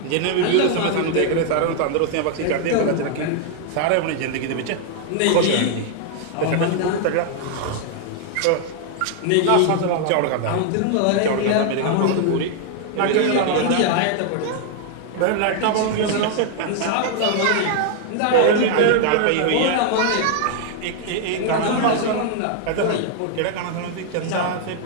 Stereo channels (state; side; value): different; both; correlation 0.00